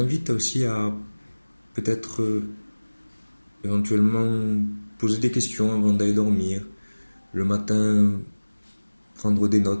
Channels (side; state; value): both; inverted; correlation -1.00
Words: aussi à peut-être éventuellement poser des questions avant d'aller dormir. Le matin, prendre des